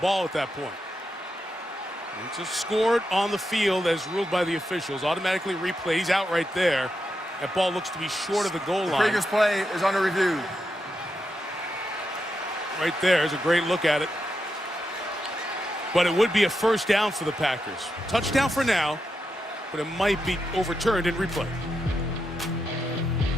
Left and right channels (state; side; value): normal; both; correlation 0.86